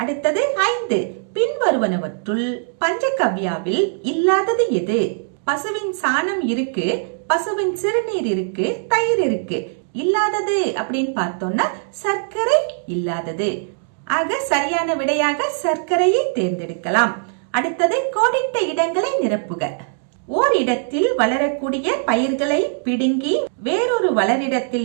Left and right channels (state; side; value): silent; left; digital silence